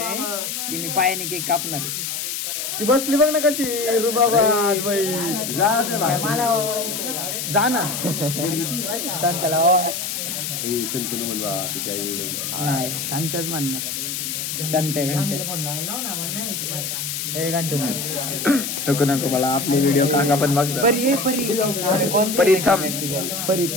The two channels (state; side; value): noise; left; hiss, 4 dB below the sound